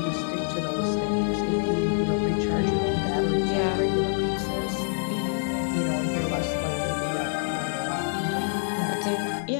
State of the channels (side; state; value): right; silent; digital silence